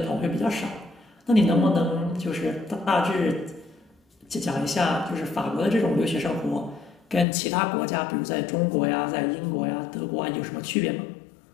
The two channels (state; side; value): drops out; right; at 7.2 s